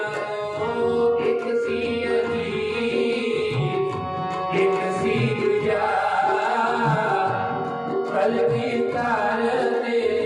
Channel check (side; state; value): both; identical; correlation 1.00